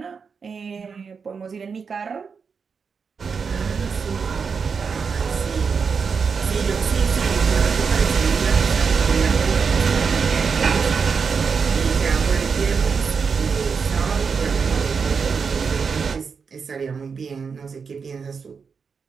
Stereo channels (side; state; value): left; quieter; 5.7 dB